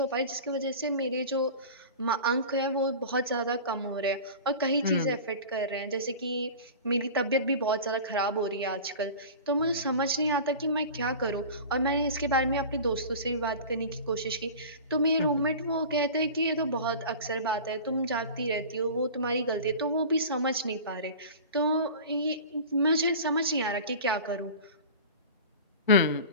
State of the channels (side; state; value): both; inverted; correlation -0.36